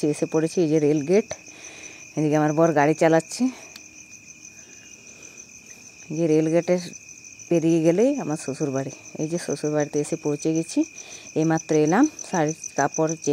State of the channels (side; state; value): both; identical; correlation 1.00